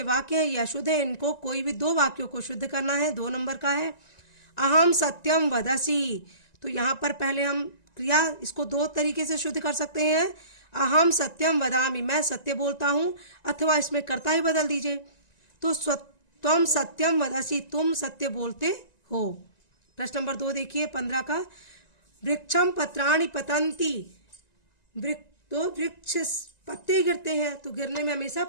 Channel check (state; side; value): late; right; 1.9 ms